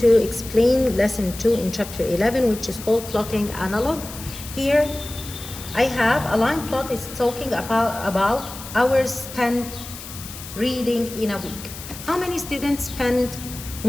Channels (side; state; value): left; noise; hiss, 12 dB below the sound